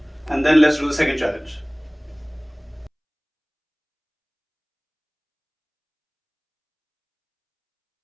and then let's do the second challenge.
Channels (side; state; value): both; identical; correlation 1.00